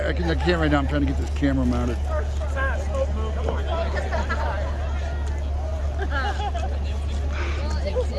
now. I'm trying to get this camera mounted.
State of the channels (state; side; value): identical; both; correlation 1.00